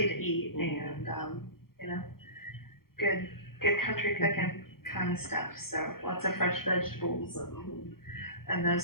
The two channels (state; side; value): late; right; 0.93 ms